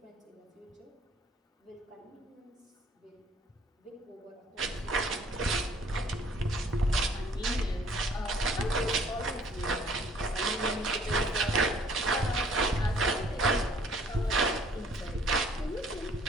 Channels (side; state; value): both; normal; correlation 0.58